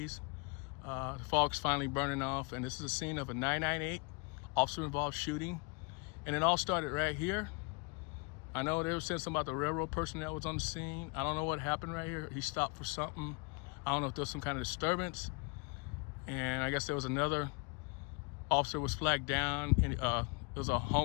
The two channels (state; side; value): quieter; right; 31.5 dB